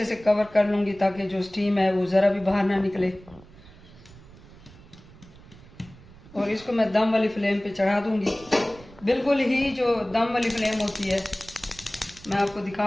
से कवर कर लूँगी ताकि जो स्टीम है वो ज़रा भी बाहर ना निकले। और इसको मैं दम वाली फ्लेम पे चढ़ा दूँगी। बिल्कुल ही जो दम वाली फ्लेम होती है, मैं आपको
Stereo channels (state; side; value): noise; right; rumble, 21 dB below the sound